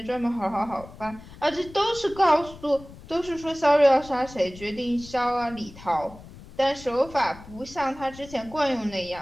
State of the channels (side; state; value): left; noise; rumble, 18 dB below the sound